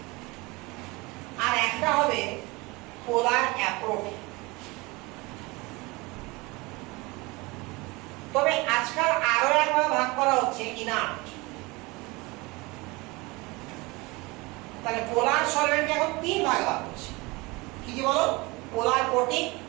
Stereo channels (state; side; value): quieter; left; 24.2 dB